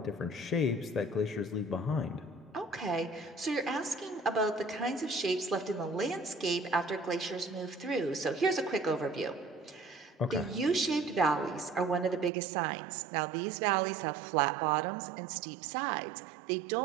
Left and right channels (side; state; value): left; drops out; at 12.3 s